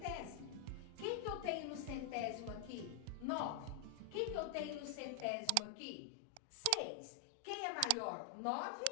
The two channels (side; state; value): both; different; correlation 0.00